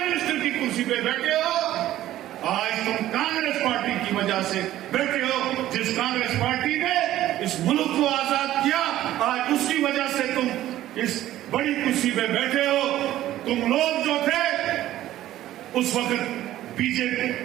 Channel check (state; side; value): quieter; left; 13.8 dB